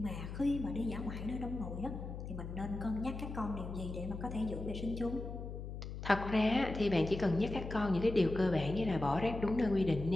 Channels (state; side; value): noise; left; hum, 8 dB below the sound